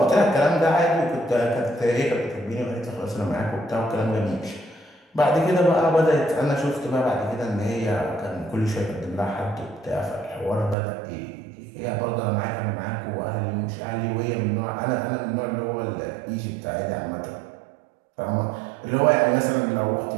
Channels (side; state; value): left; drops out; at 10.8 s